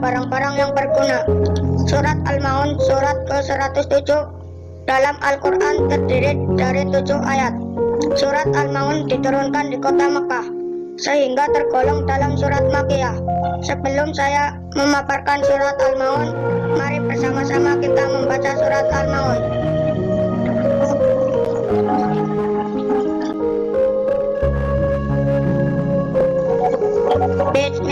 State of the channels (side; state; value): both; identical; correlation 1.00